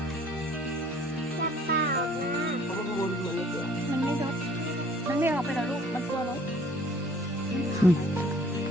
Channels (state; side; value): normal; both; correlation 0.55